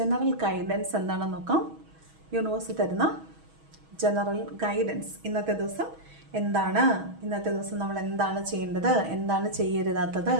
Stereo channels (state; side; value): late; left; 6.2 ms